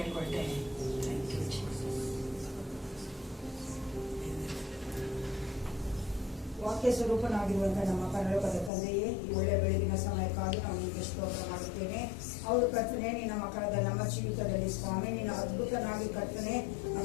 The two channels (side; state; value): right; drops out; at 8.7 s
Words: ಹೇಳ್ಕೊಳ್ತೇನೆ. Thank you, Jesus. ವಾಕ್ಯ ಸ್ವರೂಪನಾಗಿರುವಂತಹ ನಮ್ಮ ಪರಲೋಕದ ತಂದೆಯೇ, ಈ ಒಳ್ಳೆ ಬೆಳಗಿನ ಸಮಯಕ್ಕಾಗಿ ನಾವು ನಿಮಗೆ ಸ್ತೋತ್ರ ಮಾಡುತ್ತೇನೆ. ಅವರು ಕರ್ತನೆ, ನಿನ್ನ ಮಕ್ಕಳಾದ ನಮ್ಮ ಜೀವಿತದಲ್ಲಿ ಸ್ವಾಮಿ ನಿನ್ನ ಅದ್ಭುತನಾಗಿ ಕರ್ತನೆ